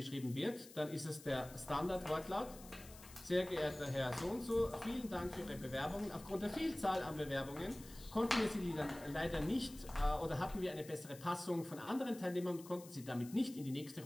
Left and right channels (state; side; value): noise; left; hiss, 18 dB below the sound